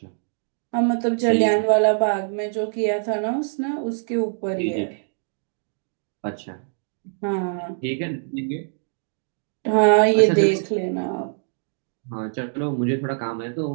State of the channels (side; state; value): left; silent; digital silence